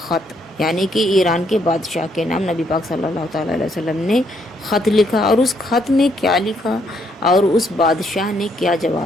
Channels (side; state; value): both; normal; correlation 0.72